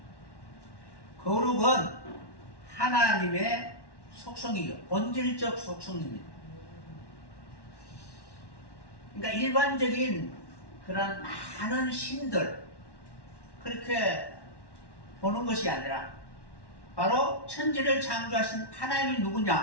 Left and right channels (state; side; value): late; right; 1.1 ms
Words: 거룩은 하나님의 속성이요, 본질적 속성입니다. 그러니까 일반적인 그런 많은 신들 그렇게 보는 것이 아니라 바로 천지를 창조하신 하나님이